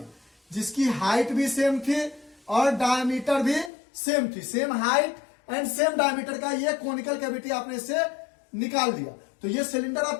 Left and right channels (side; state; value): right; drops out; at 3.7 s